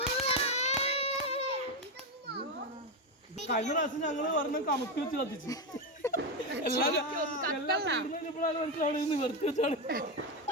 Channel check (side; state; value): both; normal; correlation 0.10